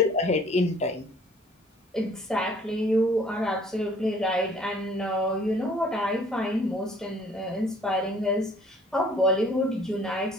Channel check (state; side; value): normal; both; correlation 0.56